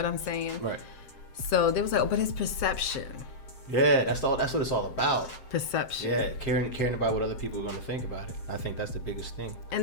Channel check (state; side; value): late; right; 7.6 ms